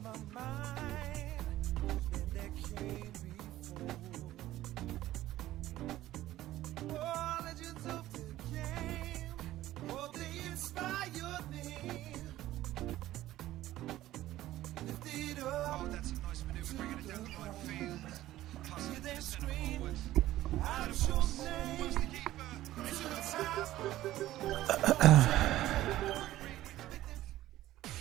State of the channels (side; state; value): left; quieter; 14.9 dB